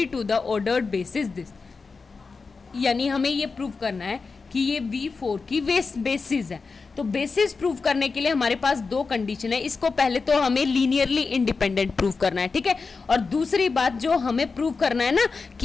to the ordered basis this, यानी हमें ये प्रूव करना है कि ये V4 की बेसिस है। तो बेसिस प्रूव करने के लिए हमारे पास 2 कंडीशन है। इसको पहले तो हमें लीनियरली इंडिपेंडेंट प्रूव करना है, ठीक है। और दूसरी बात जो हमें प्रूव करना है ना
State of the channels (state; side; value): quieter; right; 4.5 dB